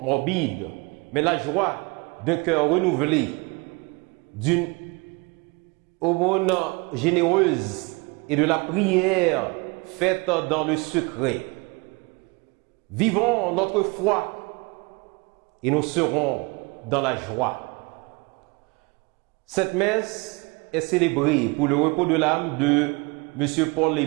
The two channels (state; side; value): quieter; left; 27.8 dB